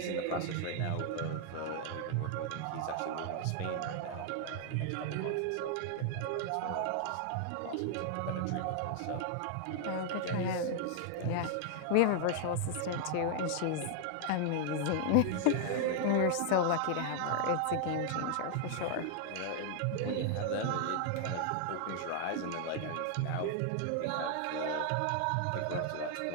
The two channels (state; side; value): different; both; correlation 0.00